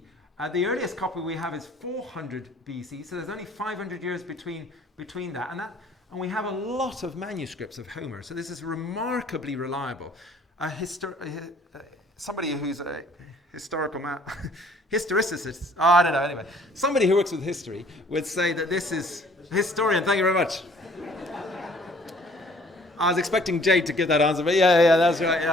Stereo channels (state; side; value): normal; both; correlation 0.57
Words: The earliest copy we have is 400 BC, so there's only 500 years between that. And we have a lot of manuscripts of Homer, so this is remarkably reliable. Somebody who's a historical historicist, I don't know, anyway. Somebody who works with history would say that this is, historian, thank you very much. I was expecting Jade to give that answer, but yeah, that's right.